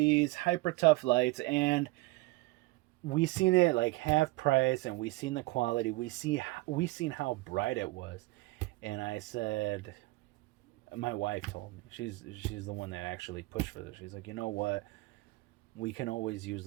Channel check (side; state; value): left; quieter; 21.5 dB